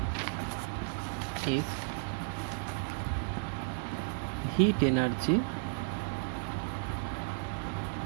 is heat energy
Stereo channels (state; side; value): silent; left; digital silence